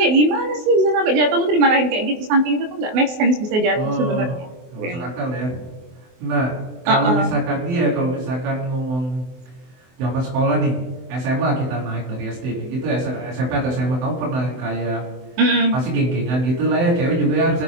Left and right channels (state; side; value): late; left; 24 ms